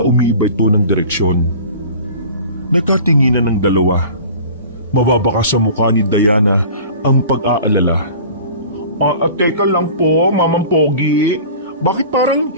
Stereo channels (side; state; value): both; inverted; correlation -0.41